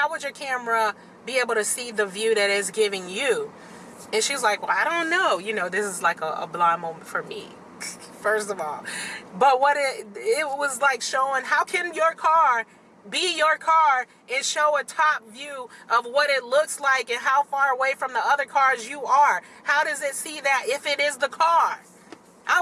would your camera be able to see the view that it's giving you? And she's like, well, I don't know. This is like a blind moment for me, first of all. But what it was like showing, how can your car be your car and show a top view of what it looks like and how far away from the other cars you are? How does it see that if it is the car? I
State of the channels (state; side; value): identical; both; correlation 1.00